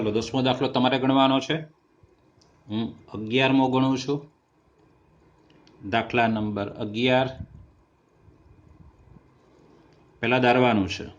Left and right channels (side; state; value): both; identical; correlation 1.00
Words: 10મો દાખલો તમારે ગણવાનો છે. હું 11મો ગણું છું. દાખલા નંબર 11 પહેલા ધારવાનું છે.